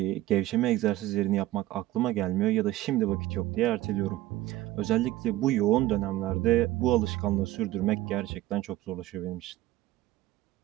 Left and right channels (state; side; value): quieter; left; 15.7 dB